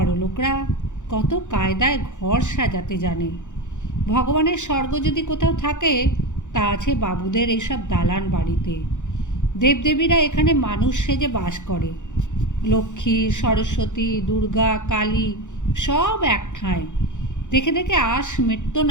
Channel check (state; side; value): late; right; 0.85 ms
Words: লোকরা কত কায়দায় ঘর সাজাতে জানে। ভগবানের স্বর্গ যদি কোথাও থাকে তা আছে বাবুদের এইসব দালান বাড়িতে। দেবদেবীরা এখানে মানুষ সেজে বাস করে। লক্ষ্মী, সরস্বতী, দুর্গা, কালী সব এক ঠাঁই। দেখে দেখে আশ মিটত